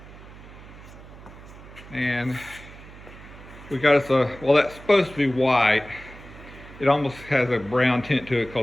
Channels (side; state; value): right; noise; hum, 18 dB below the sound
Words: And we got us a, well, that's supposed to be white. It almost has a brown tint to it